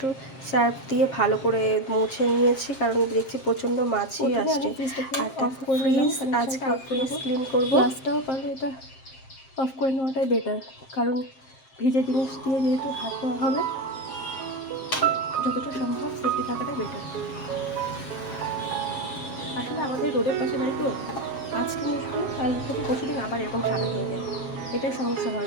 সার্ফ দিয়ে ভালো করে মুছে নিয়েছি, কারণ দেখছি প্রচণ্ড মাছি আসছে। আর আজকে ফ্রিজ ক্লিন করবো, গ্লাসটাও পারলে এটা অফ করে নেওয়াটাই বেটার, কারণ ভিজে জিনিস দিয়ে যেহেতু হাত ধোয়া হবে, যতটা সম্ভব সেফটি থাকাটাই বেটার। আসলে আমাদের রোডের পাশে বাড়ি তো, আজকে মুছবো, কাল থেকে পরশুদিন আবার এরকম সাদা হয়ে যায়, এটাই সমস্যা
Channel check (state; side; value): late; right; 7.5 ms